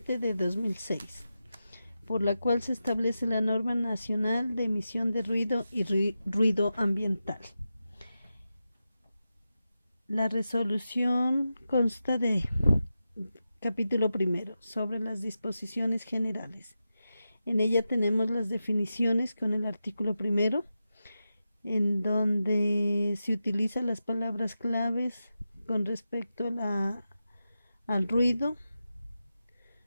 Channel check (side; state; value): both; inverted; correlation -0.90